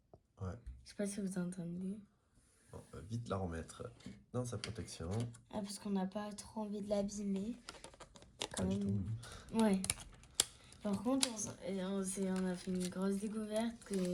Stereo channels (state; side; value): identical; both; correlation 1.00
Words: Ouais. Je sais pas si vous entendez. Bon, on va vite la remettre dans sa protection. Ah, parce qu'on n'a pas trop envie de l'abîmer. Pas Quand du même. tout. Ouais. Par contre, on a fait une grosse découverte